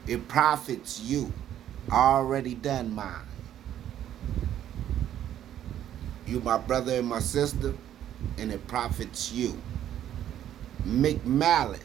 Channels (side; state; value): left; quieter; 11.1 dB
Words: It profits you. I already done mine. You my brother and my sister, and it profits you.